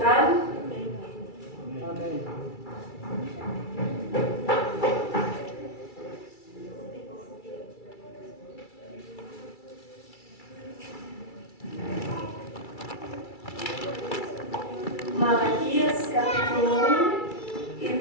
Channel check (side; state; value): right; late; 2.3 ms